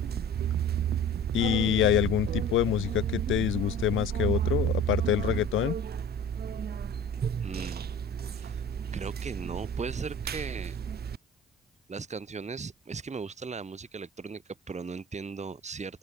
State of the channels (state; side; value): normal; both; correlation 0.41